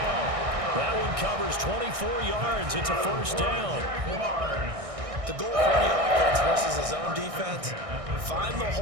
That one covers 24 yards. It's a first down. The goal for any offense versus his own defense, find the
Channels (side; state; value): left; late; 1.6 ms